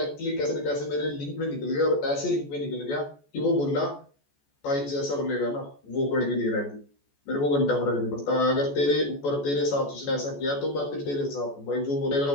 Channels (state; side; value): late; right; 14 ms